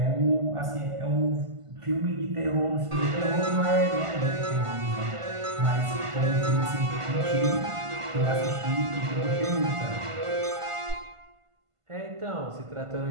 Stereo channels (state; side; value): late; left; 1.5 ms